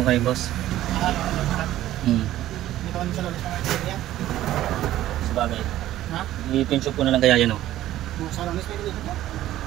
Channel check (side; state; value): left; quieter; 13.8 dB